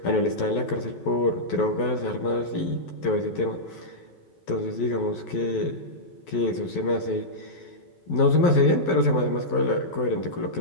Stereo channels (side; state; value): right; late; 12 ms